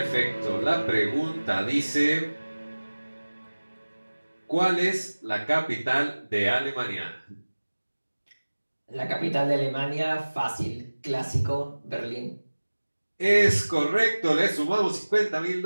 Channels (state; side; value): inverted; both; correlation -1.00